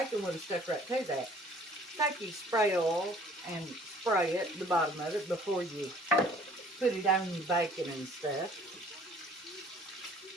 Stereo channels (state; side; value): normal; both; correlation 0.54